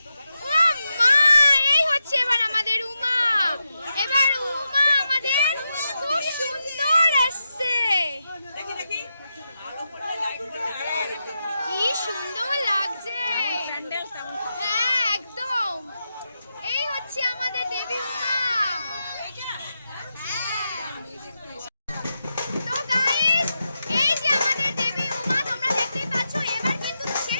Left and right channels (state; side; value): inverted; both; correlation -0.87